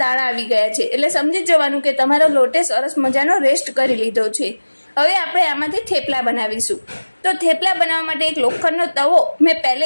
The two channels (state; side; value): inverted; both; correlation -1.00